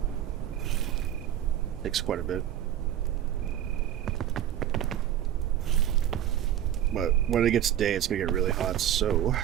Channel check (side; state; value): left; quieter; 11.3 dB